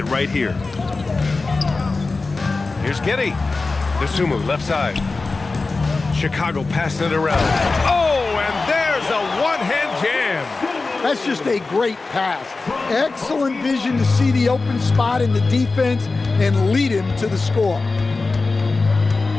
right here. Here's Giddy. Dosunmu, left side. Chicago passing it around. Oh, and there's a one-hand jam. That's just a great pass. Excellent vision to see the open spot in the defense and lead him to the score.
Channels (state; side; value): quieter; right; 3.7 dB